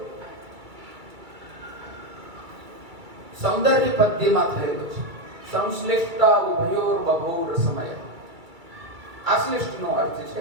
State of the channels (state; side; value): late; left; 2.3 ms